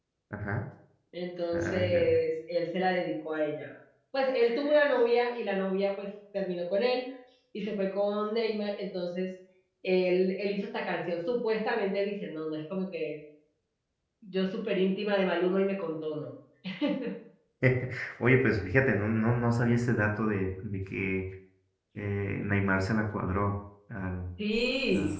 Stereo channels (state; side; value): identical; both; correlation 1.00